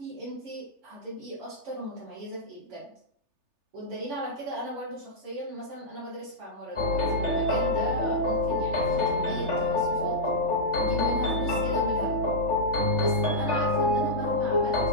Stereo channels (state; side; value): late; left; 3.3 ms